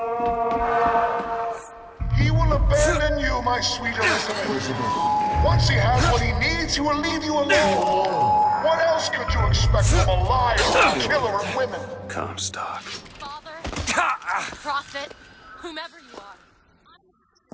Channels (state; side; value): identical; both; correlation 1.00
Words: He will abandon you, my sweet Elizabeth. Once he has what he needs, he will leave you alone. What else could you expect from a liar, a killer of women? Comstock. Father, prophet, whomever you are.